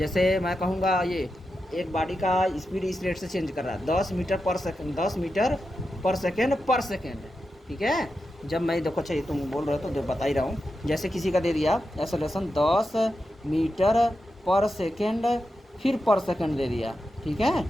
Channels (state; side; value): normal; both; correlation 0.89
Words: मैं कहूँगा ये एक गाड़ी का स्पीड इस रेट से चेंज कर रहा है 10 मीटर पर सेकेंड, 10 मीटर पर सेकेंड, ठीक है। जब मैं देखो, अच्छा ये तुम बोल रहे हो तो बता ही रहा हूँ, जैसे किसी का दे दिया एक्सेलरेशन 10 मीटर पर सेकेंड, फिर पर सेकेंड दे दिया, ठीक है,